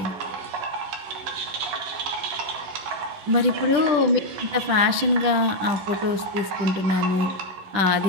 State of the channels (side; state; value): left; late; 11 ms